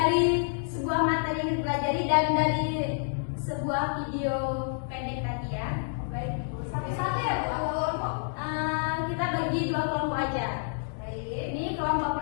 sebuah materi yang dipelajari dan dari sebuah video pendek tadi ya. Baik, satu-satu ya Bu. Kita bagi dua kelompok aja. Baik, ini kelompok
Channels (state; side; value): silent; right; digital silence